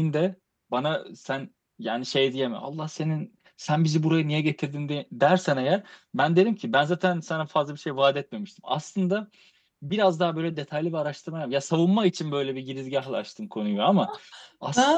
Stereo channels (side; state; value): both; identical; correlation 1.00